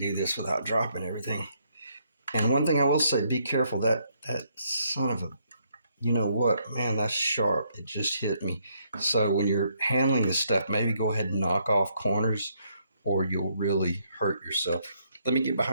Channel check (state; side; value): inverted; both; correlation -0.73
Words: this without dropping everything. And one thing I will say, be careful, that son of a, you know what, man, that's sharp. It just hit me. So when you're handling this stuff, maybe go ahead and knock off corners or you'll really hurt yourself. Let me get